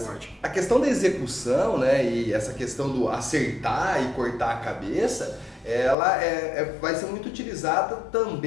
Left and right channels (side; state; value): right; drops out; at 6.0 s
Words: morte. A questão da execução, né, e essa questão do acertar e cortar a cabeça, ela vai ser muito utilizada